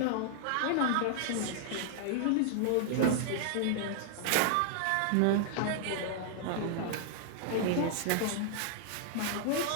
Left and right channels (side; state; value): both; different; correlation -0.01